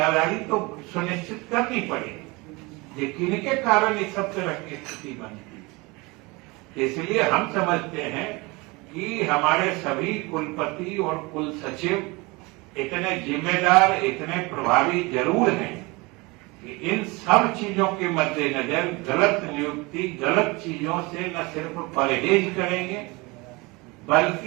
तो सुनिश्चित करनी पड़ेगी, लेकिन इनके कारण इस सब तरह की स्थिति बनती है। इसलिए हम समझते हैं कि हमारे सभी कुलपति और कुल सचिव इतने जिम्मेदार, इतने प्रभावी जरूर हैं कि इन सब चीजों के मद्देनजर गलत नियुक्ति, गलत चीजों से न सिर्फ परहेज करेंगे,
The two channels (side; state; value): left; quieter; 25.2 dB